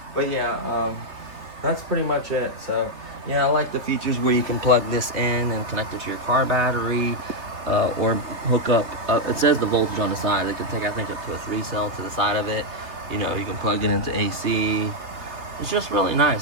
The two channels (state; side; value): late; left; 3.5 ms